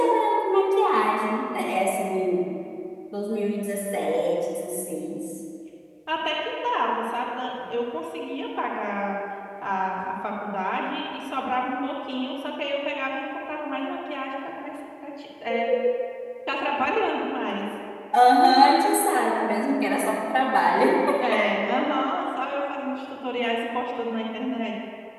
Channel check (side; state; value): both; identical; correlation 1.00